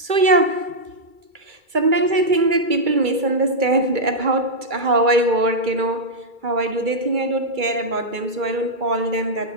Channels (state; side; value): late; left; 2.3 ms